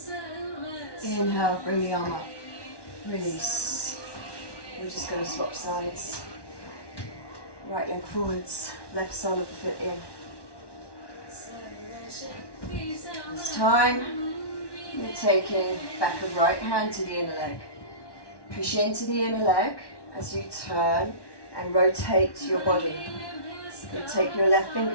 Inhale, bring the arm up. Release. We're just going to swap sides. Right leg forwards, left sole of the foot in. This time, you're taking back of right hand to the inner leg. Push into the inner leg as you turn and rotate your body. Then take your left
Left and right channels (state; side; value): late; right; 1.1 ms